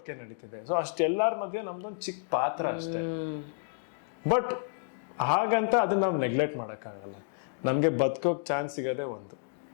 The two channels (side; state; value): right; silent; digital silence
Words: ನಡೀತಿದೆ. ಸೊ ಅಷ್ಟೆಲ್ಲರ ಮಧ್ಯೆ ನಮ್ದೊಂದು ಚಿಕ್ಕ ಪಾತ್ರ ಅಷ್ಟೇ. ಬಟ್ ಹಾಗಂತ ಅದನ್ನ ನಾವು ನೆಗ್ಲೆಕ್ಟ್ ಮಾಡೋಕ್ಕಾಗಲ್ಲ. ನಮಗೆ ಬದುಕೋಕ್ ಚಾನ್ಸ್ ಸಿಗೋದೇ ಒಂದು,